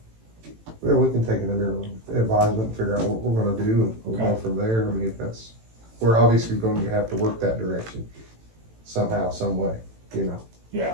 Yeah, we can take it under advisement and figure out what we're gonna do, and we'll go Okay. from there. I mean, we're obviously going to have to work that direction somehow, some way, you know. yeah.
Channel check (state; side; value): late; left; 18 ms